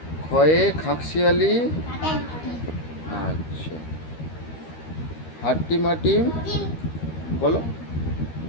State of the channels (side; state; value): right; late; 13 ms